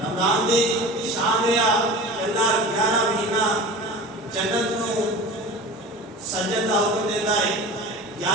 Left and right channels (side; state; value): both; normal; correlation 0.35